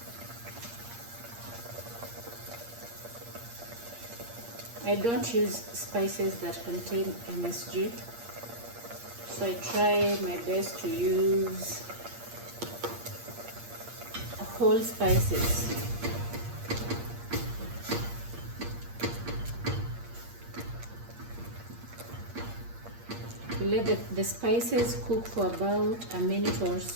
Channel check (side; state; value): left; late; 8.6 ms